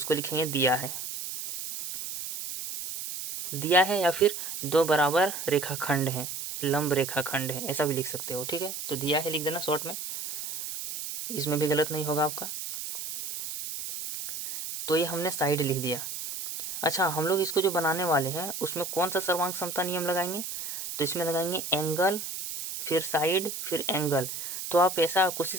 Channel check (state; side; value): noise; right; hiss, 6 dB below the sound